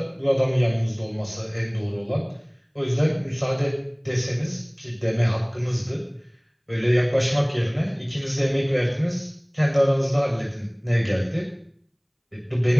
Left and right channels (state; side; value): identical; both; correlation 1.00